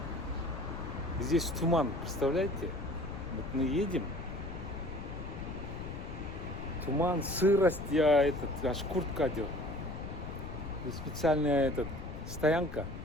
Здесь туман, представляете? Вот мы едем. Туман, сырость, аж куртка одел. Здесь специальная стоянка,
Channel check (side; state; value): left; noise; rumble, 10 dB below the sound